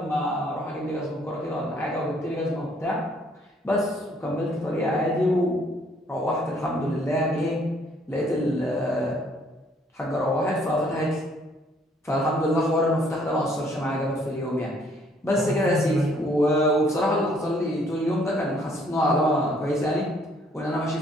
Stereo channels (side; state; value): both; normal; correlation 0.64